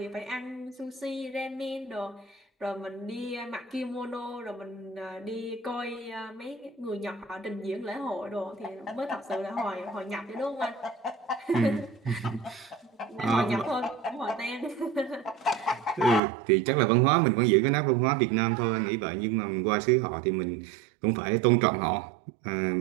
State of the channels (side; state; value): left; drops out; at 16.2 s